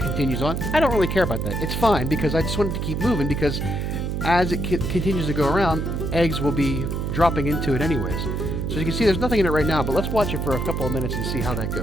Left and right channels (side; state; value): right; noise; hum, 2 dB below the sound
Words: on. I don't really care about that. It's fine because I just want it to keep moving because as it continues to go around, eggs will be dropping into it anyways. So you can see there's nothing in it right now, but let's watch it for a couple of minutes and see how that